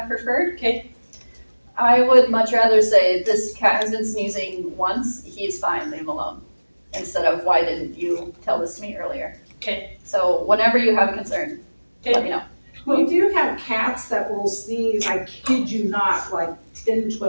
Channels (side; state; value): both; inverted; correlation -1.00